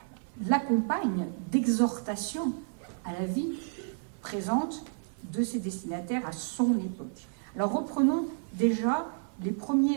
l'accompagne d'exhortations à la vie présente de ses destinataires à son époque. Alors reprenons déjà les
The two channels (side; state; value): left; silent; digital silence